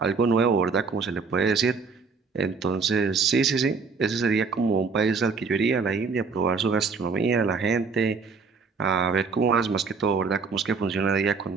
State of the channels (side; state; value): left; quieter; 4.9 dB